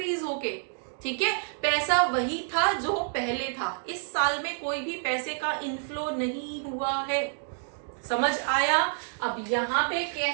होके। ठीक है, पैसा वही था जो पहले था, इस साल में कोई भी पैसे का इनफ्लो नहीं हुआ है। समझ आया? अब यहाँ पे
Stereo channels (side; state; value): left; silent; digital silence